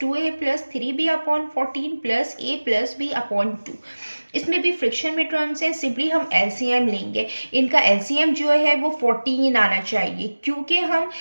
plus 3b upon 14 plus a plus b upon 2। इसमें भी फ्रिक्शन में टर्म्स हैं, सिंपली हम एलसीएम लेंगे। इनका एलसीएम जो है वो 14 आना चाहिए, क्योंकि हम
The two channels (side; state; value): both; inverted; correlation -1.00